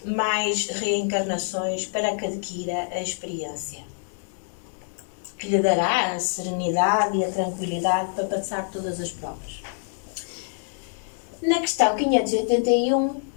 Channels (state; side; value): silent; right; 61 dB below the other